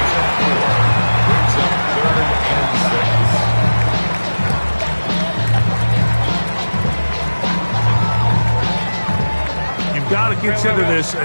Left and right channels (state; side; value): inverted; both; correlation -1.00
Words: You've got to consider this